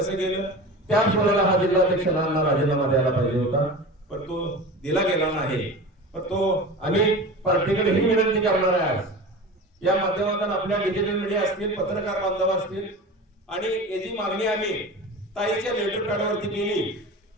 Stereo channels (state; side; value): normal; both; correlation 0.32